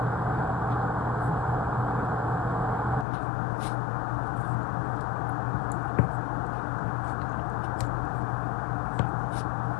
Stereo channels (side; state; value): right; drops out; at 3.1 s